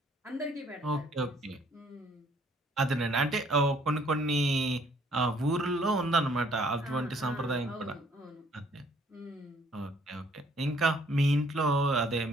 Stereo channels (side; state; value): both; normal; correlation 0.63